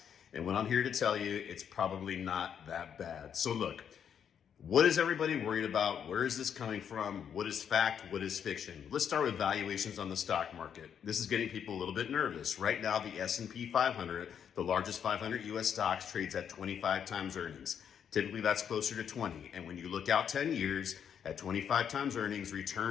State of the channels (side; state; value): right; quieter; 8.2 dB